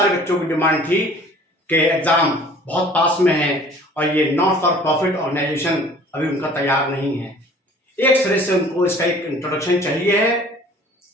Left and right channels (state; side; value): normal; both; correlation 0.50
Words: बच्चों की डिमांड थी कि एग्जाम बहुत पास में है और ये नॉट फॉर प्रॉफिट ऑर्गेनाइजेशन अभी उनका तैयार नहीं है। एक सिरे से उनको इसका एक इंट्रोडक्शन चाहिए है